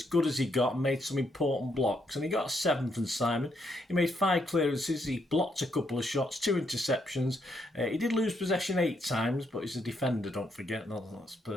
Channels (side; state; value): both; normal; correlation 0.76